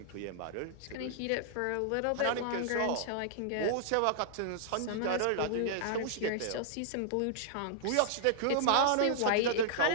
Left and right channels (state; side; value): different; both; correlation -0.01